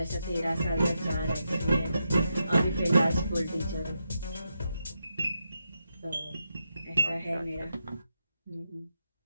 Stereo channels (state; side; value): inverted; both; correlation -0.85